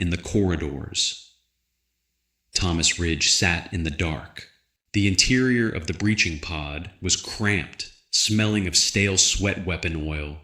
the corridors." Thomas Ridge sat in the dark. The interior of the breaching pod was cramped, smelling of stale sweat weapon oil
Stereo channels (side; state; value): both; identical; correlation 1.00